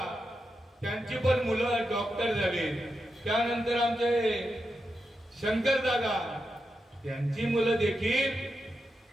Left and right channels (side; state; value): both; normal; correlation 0.87